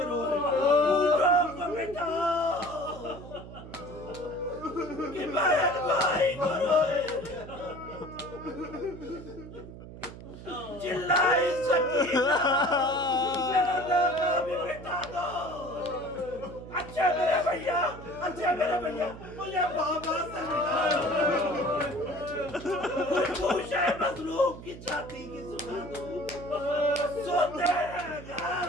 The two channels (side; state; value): right; noise; hum, 14 dB below the sound